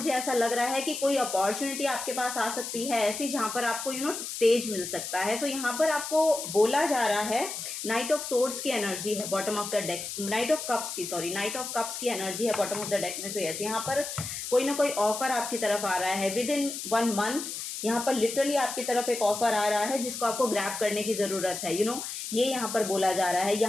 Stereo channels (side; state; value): left; noise; hiss, 6 dB below the sound